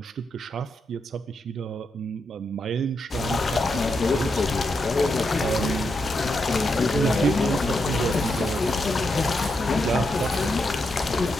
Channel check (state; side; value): normal; both; correlation 0.83